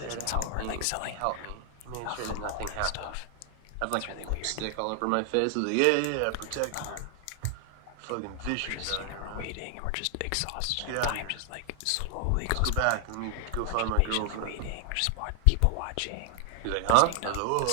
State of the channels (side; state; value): both; different; correlation 0.00